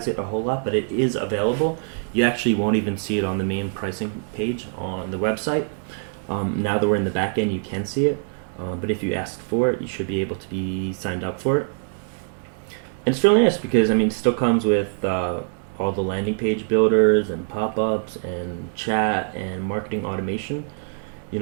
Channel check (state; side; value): silent; left; digital silence